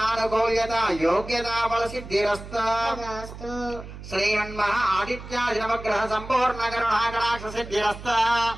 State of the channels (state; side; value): noise; right; hum, 13 dB below the sound